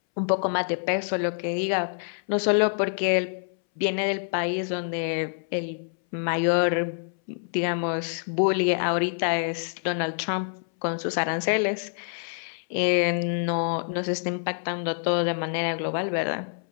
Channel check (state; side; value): silent; right; 61 dB below the other